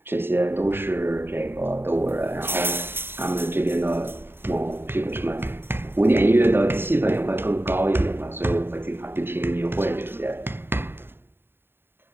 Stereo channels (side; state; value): left; late; 0.11 ms